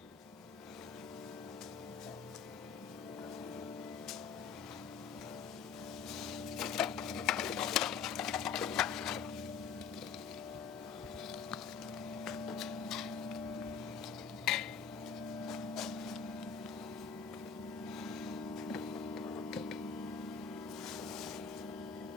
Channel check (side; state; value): right; quieter; 6.5 dB